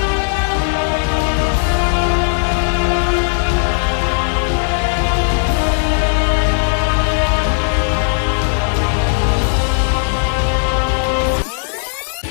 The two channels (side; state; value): right; silent; digital silence